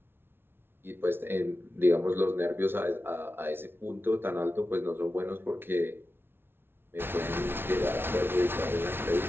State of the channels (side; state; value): left; late; 0.11 ms